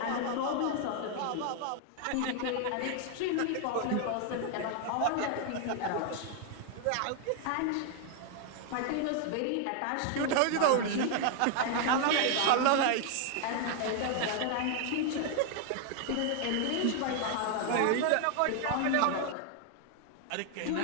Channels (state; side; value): different; both; correlation 0.00